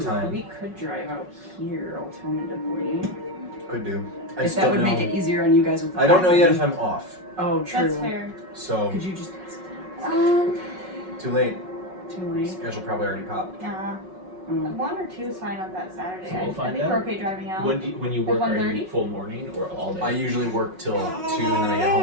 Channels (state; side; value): late; left; 5.4 ms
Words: drive out here alternatively. Could do. I If just that don't would know. make it easier on you guys with the I don't know yet packing. if I'm off. Oh, true. That's fair. So Could you just too late. too late? Schedule probably already popped. Mm. 1 or 2 is fine on that Saturday. So we'll I find think out. we're okay driving out. When you work, are you 1:30? full morning or all day? I usually work till 2 and then I get home